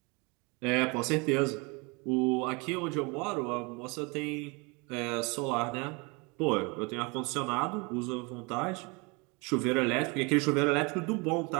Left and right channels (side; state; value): left; quieter; 29.1 dB